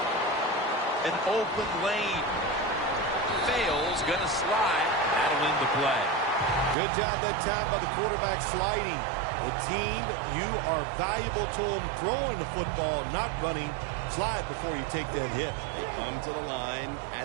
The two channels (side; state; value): left; drops out; at 6.8 s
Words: An open lane. Fails, going to slide. That'll end the play. Good job that time by the quarterback sliding. The team, you are valuable to them throwing the football, not running. Slide before you take that hit. They come to the line